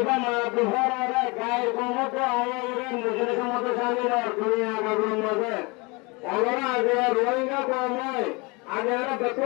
মাহবুবর আরে গায় কমত আইরে মুজরে সমত শামিল আর দুনিয়া গাগুর মধ্যে ওরা আগে রোহিঙ্গা কময় আগে আর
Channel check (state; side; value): quieter; right; 27.3 dB